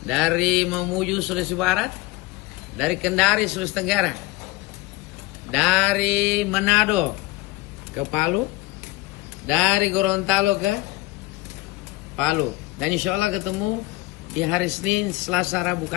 dari Mamuju, Sulawesi Barat, dari Kendari, Sulawesi Tenggara, dari Manado ke Palu, dari Gorontalo ke Palu. Dan insya Allah ketemu di hari Senin, Selasa, Rabu,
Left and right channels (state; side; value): quieter; right; 20.4 dB